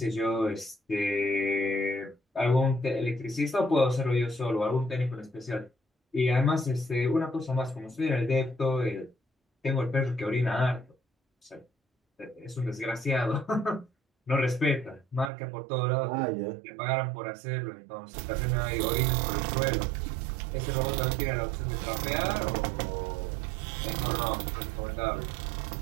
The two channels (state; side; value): drops out; left; at 15.3 s